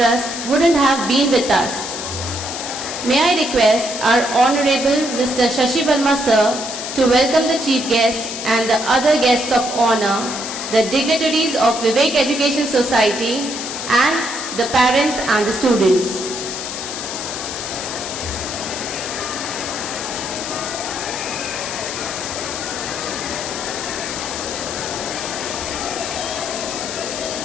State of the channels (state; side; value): noise; left; hiss, 6 dB below the sound